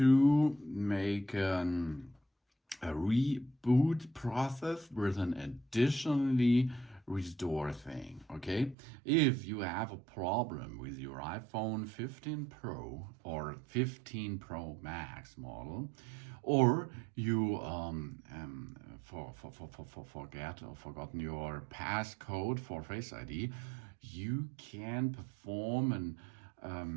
make a reboot process with an additionally restore thing. Okay, if you have a problem with your iPhone 15 Pro or 15 Pro Max model, or you forget or forgotten your passcode for Face ID, you can perform an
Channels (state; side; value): drops out; left; at 8.8 s